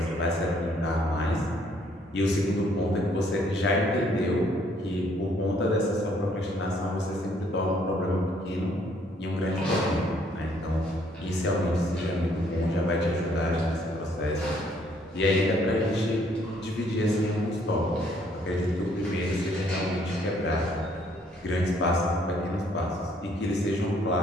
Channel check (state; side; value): normal; both; correlation 0.65